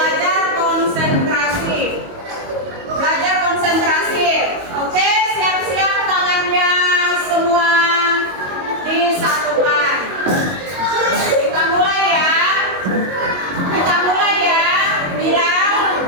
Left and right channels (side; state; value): left; late; 22 ms